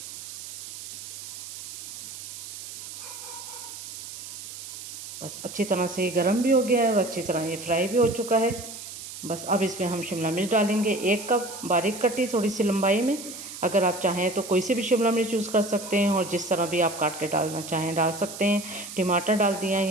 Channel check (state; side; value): noise; right; hiss, 11 dB below the sound